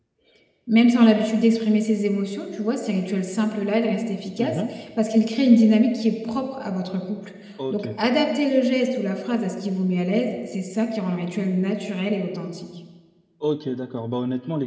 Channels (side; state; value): both; identical; correlation 1.00